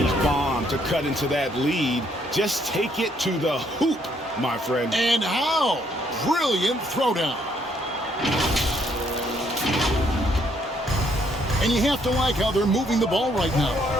bomb to cut into that lead. Just take it to the hoop, my friend. And how? Brilliant throwdown. And you have to like how they're moving the ball right now.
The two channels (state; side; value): normal; both; correlation 0.69